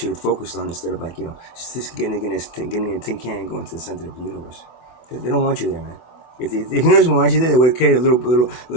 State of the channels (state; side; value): late; right; 24 ms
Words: have focused on instead of just getting a tin can and going to the center of the universe. They don't want you there, man. If the universe want you there, they would have created a little